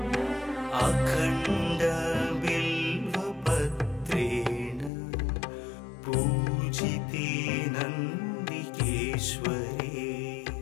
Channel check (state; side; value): drops out; right; at 4.9 s